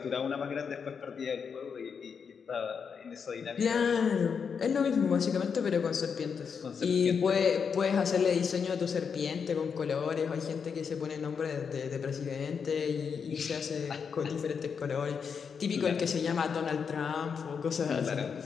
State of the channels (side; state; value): right; quieter; 6.3 dB